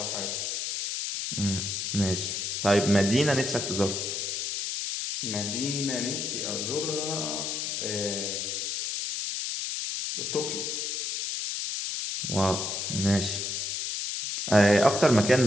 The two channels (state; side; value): noise; left; hiss, 2 dB below the sound